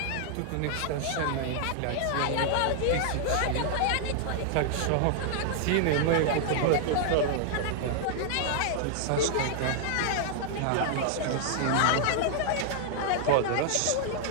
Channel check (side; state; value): both; different; correlation -0.01